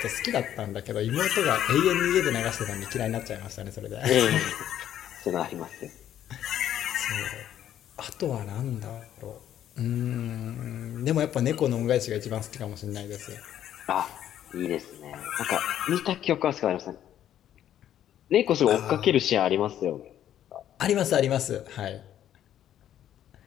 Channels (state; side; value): quieter; right; 11.1 dB